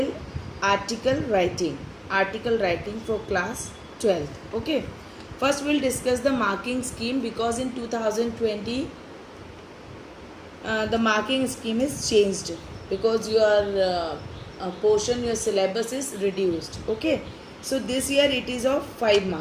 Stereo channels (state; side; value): identical; both; correlation 1.00